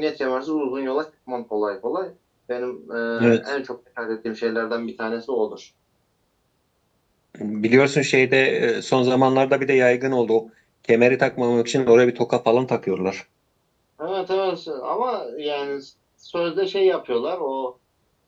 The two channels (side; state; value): both; identical; correlation 1.00